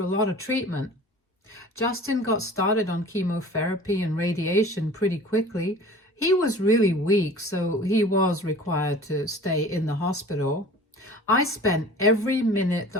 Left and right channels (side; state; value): both; normal; correlation 0.43